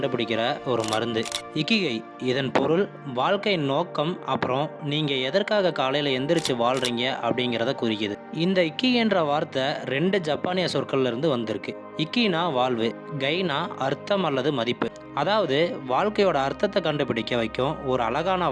ஒரு மருந்து. இக்கிகை இதன் பொருள் வாழ்க்கையின் நோக்கம், அப்புறம் நீங்கள் எதற்காக காலையில் எந்திரிச்சு வாழ்கிறீங்க அப்படிங்கிறத குறிக்குது. இந்த இக்கிகைன்ற வார்த்தை 2 ஜப்பானிய சொற்கள்ல இருந்து வந்திருக்கு. இக்கினா வாழ்வு, கைனா அர்த்தம் அல்லது மதிப்பு. அதாவது வாழ்க்கையோட அர்த்தத்தை கண்டுபிடிக்க வைக்கும் ஒரு அழகான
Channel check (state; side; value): identical; both; correlation 1.00